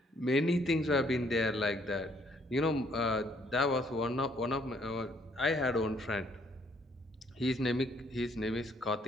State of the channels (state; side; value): normal; both; correlation 0.66